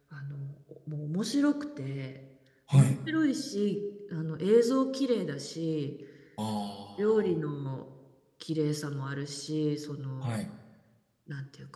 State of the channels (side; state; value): both; identical; correlation 1.00